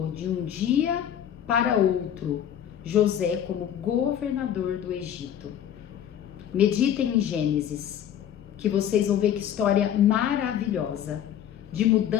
de um dia para outro José como governador do Egito. Meditem em Gênesis, que vocês vão ver que história maravilhosa, de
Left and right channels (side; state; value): right; quieter; 9.9 dB